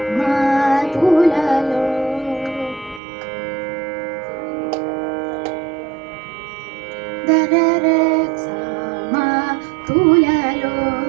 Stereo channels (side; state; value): left; drops out; at 3.0 s